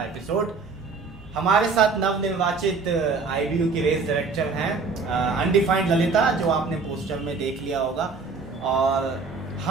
एपिसोड। हमारे साथ नवनिर्वाचित आईबीयू की रेस डायरेक्टर हैं अनडिफाइंड ललिता, जो आपने पोस्टर में देख लिया होगा। और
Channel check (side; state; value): left; quieter; 4.5 dB